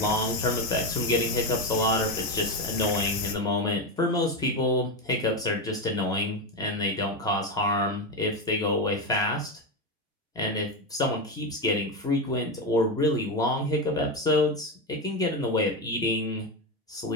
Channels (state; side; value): normal; both; correlation 0.13